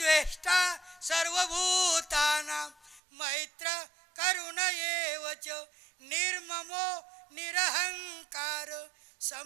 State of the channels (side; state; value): left; drops out; at 3.0 s